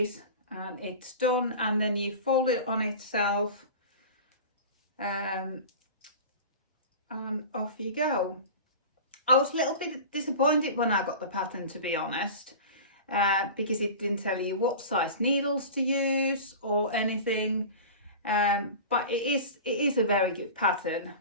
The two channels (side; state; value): both; inverted; correlation -0.34